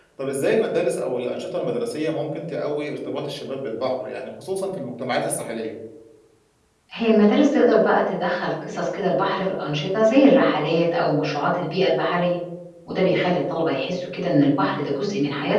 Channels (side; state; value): both; identical; correlation 1.00